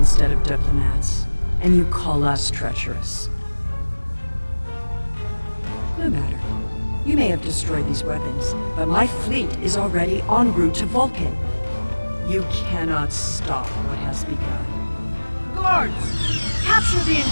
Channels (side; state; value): both; inverted; correlation -1.00